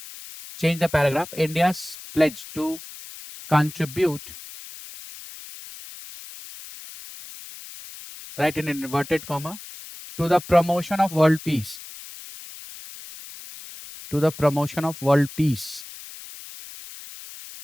Change the paragraph. India's pledge to contribute. Write in inverted comma. To the promotion of world peace. To the promotion of world peace.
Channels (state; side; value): noise; left; hiss, 15 dB below the sound